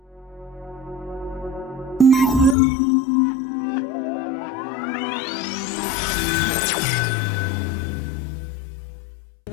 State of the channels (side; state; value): right; drops out; at 2.6 s